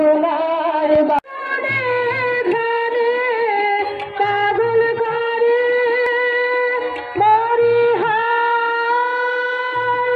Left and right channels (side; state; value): both; identical; correlation 1.00